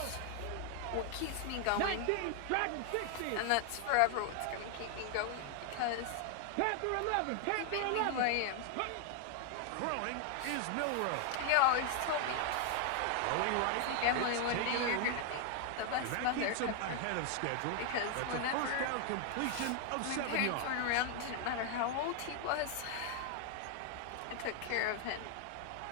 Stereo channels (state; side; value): different; both; correlation 0.00